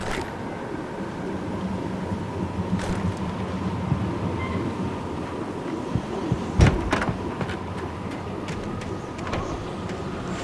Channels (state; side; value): identical; both; correlation 1.00